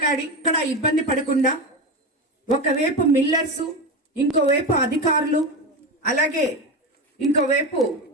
ఇక్కడ ఇబ్బంది పడకుండా ఒకవైపు మిల్లర్స్, ఇంకోవైపు అధికారులు, అలాగే ఇంకోవైపు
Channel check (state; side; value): normal; both; correlation 0.19